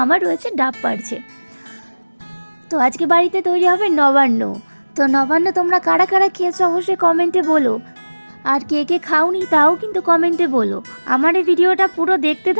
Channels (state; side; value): inverted; both; correlation -1.00